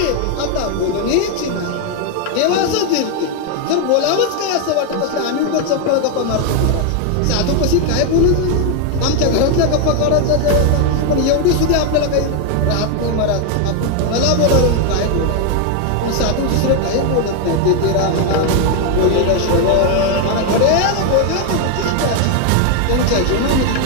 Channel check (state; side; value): different; both; correlation 0.01